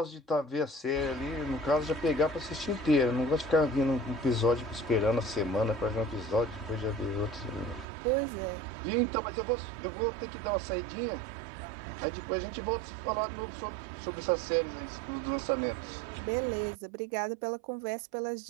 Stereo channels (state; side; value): drops out; left; at 7.9 s